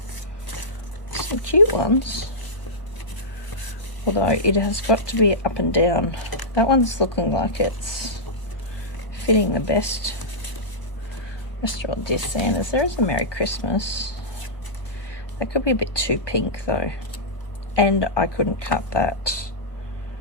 Some cute ones. Although it has got to be up and down. That one's looking like it's fitting the best. Restaurant designers. There is a Merry Christmas. That could be a bit too pink though. And I couldn't cut that.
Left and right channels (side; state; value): right; late; 1.1 ms